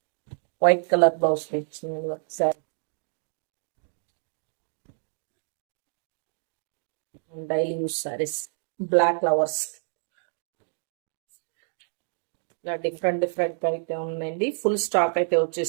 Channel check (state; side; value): silent; left; digital silence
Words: white colour blouse ఇచ్చింది sari. Daily use saris, black flowers. ఇలా డిఫరెంట్ డిఫరెంట్ అయితే ఉందండి. ఫుల్ స్టాక్ అయితే